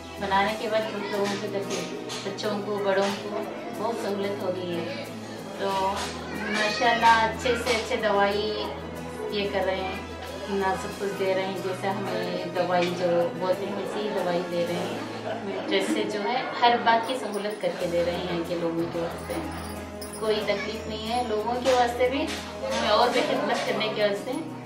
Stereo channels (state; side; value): identical; both; correlation 1.00